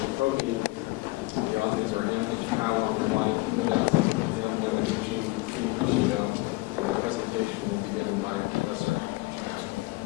Protein. The authors are M. Ichikawa, Rwani Kibida, M. Yamaguchi, P. Kushido, and the presentation will be given by Professor.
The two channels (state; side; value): quieter; right; 22.4 dB